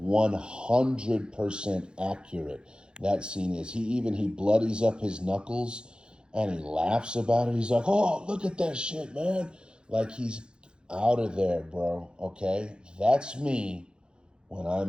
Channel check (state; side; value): late; left; 0.050 ms